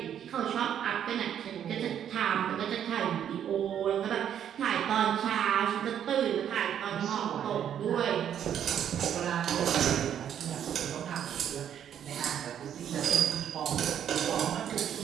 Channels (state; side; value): quieter; left; 9.5 dB